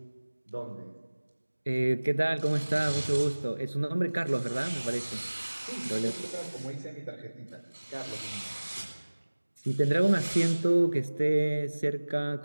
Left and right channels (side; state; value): both; inverted; correlation -1.00